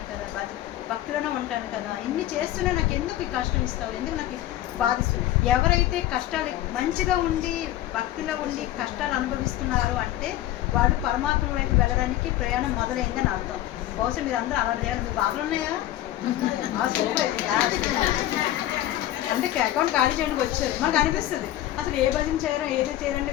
కదా, భక్తిలోనే ఉంటాను కదా, ఇన్ని చేస్తూనే నాకు ఎందుకు ఈ కష్టం ఇస్తావు, ఎందుకు నాకు బాధిస్తుంది. ఎవరైతే కష్టాలు మంచిగా ఉండి భక్తిలో ఉండి కష్టాలు అనుభవిస్తున్నారు అంటే వాళ్ళు పరమాత్మ వైపు వెళ్ళడానికి ప్రయాణం మొదలైందని అర్థం. బహుశా మీరు అందరూ అలా చేయాలి. మీకు బాధలు ఉన్నాయా? అంటే అకౌంట్ ఖాళీ చేయడానికి వచ్చారు. మనకు అనిపిస్తుంది అసలు ఏ భజన చేయరో ఏదో చేయాలంటే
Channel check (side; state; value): right; quieter; 13.9 dB